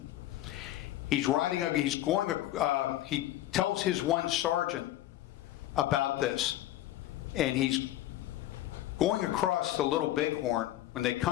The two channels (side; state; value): right; quieter; 14.4 dB